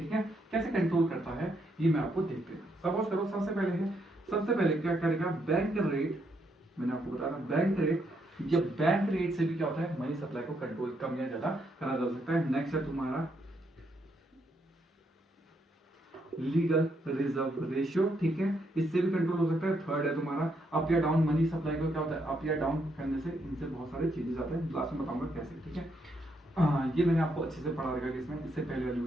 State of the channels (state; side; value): normal; both; correlation 0.76